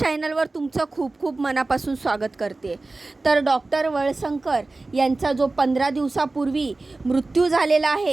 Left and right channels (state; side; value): quieter; left; 3.3 dB